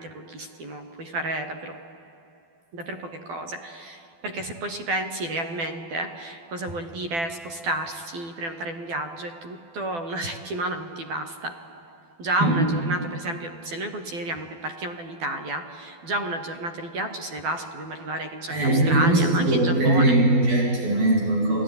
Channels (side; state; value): left; late; 12 ms